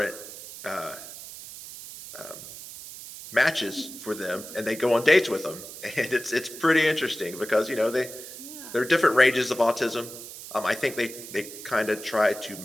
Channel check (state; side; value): noise; right; hiss, 13 dB below the sound